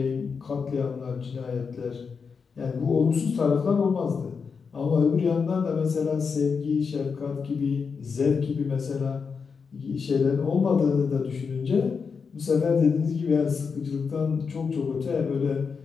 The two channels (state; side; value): quieter; right; 5.6 dB